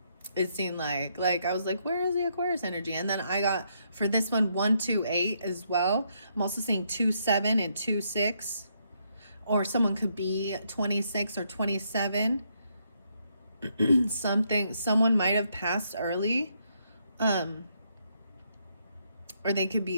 It seemed like I was like, where is the Aquarius energy? And then I got for this one 128 as well. I'm also seeing 27 and 26, or someone could be 26 or 27. Someone might have passed early. Or they could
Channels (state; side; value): inverted; both; correlation -0.75